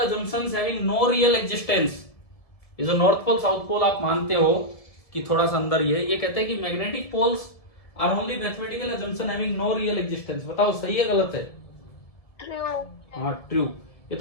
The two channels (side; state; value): right; late; 1.7 ms